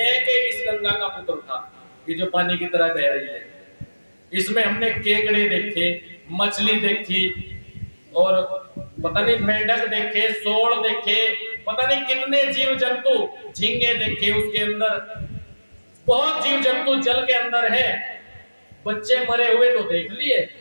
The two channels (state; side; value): inverted; both; correlation -1.00